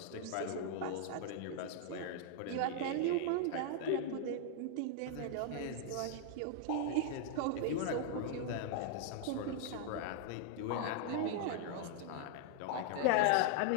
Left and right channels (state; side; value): different; both; correlation -0.01